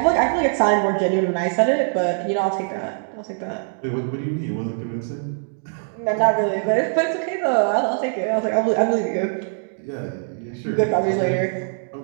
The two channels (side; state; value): left; silent; digital silence